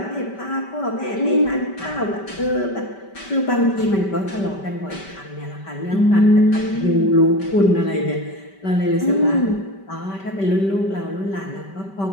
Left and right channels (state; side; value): late; right; 5.2 ms